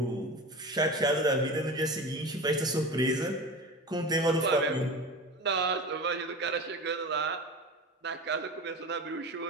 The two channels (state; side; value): normal; both; correlation 0.30